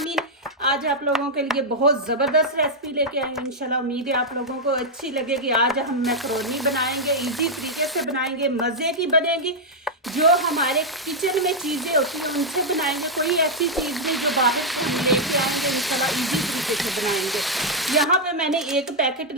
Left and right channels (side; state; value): both; normal; correlation -0.03